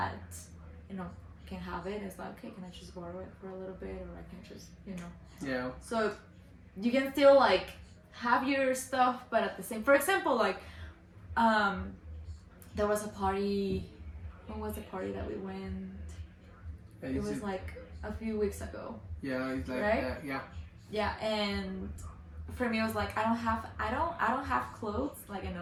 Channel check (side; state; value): both; identical; correlation 1.00